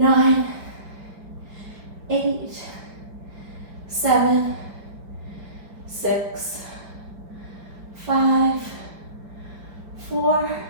8, 7, 6, 5, 4,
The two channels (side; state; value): left; late; 5.2 ms